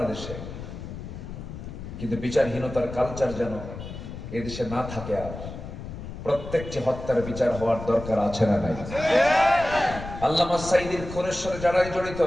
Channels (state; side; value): noise; left; rumble, 10 dB below the sound